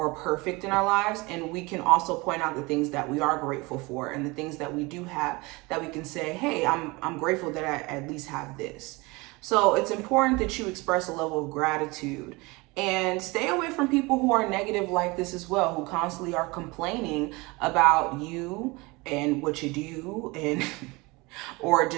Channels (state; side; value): quieter; left; 24.6 dB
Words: perfect in our lives, and we can also point out the things that we are grateful for and the things that we do have that we can say, hey, I'm grateful that I at least have this. So it's important that you express a level of gratitude and stay away from people who are negative like this as well, who constantly are complaining about you and what you do and or